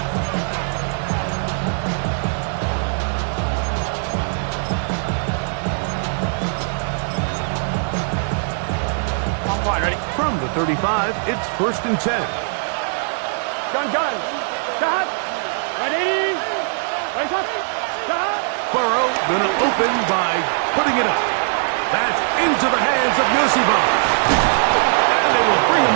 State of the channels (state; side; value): silent; left; 62 dB below the other